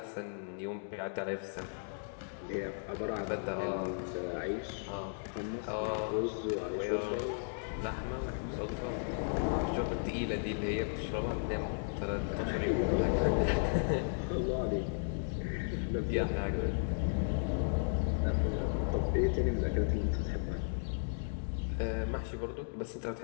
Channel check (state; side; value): silent; right; digital silence